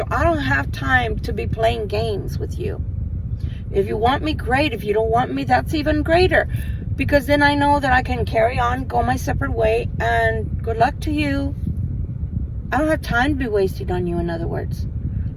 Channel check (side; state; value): both; identical; correlation 1.00